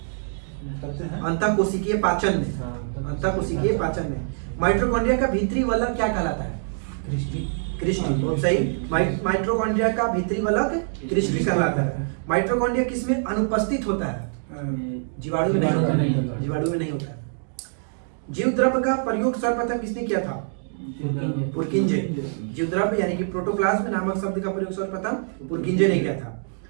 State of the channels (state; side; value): silent; left; digital silence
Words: अंतःकोशिकीय पाचन में। माइटोकॉन्ड्रिया का भीतरी वलय क्या कहलाता है? क्रिस्टी। बहुत सही। माइटोकॉन्ड्रिया का भीतरी वलय क्रिस्टी कहलाता है। माइटोकॉन्ड्रिया किसमें अनुपस्थित होता है? जीवाणु में नहीं होता है। जीव द्रव्य का प्रयोग सर्वप्रथम किसने किया था? पुरकिंजे। जीव द्रव्य यानी कि प्रोटोप्लाज्म नामक शब्द का प्रयोग सर्वप्रथम पुरकिंजे ने किया था।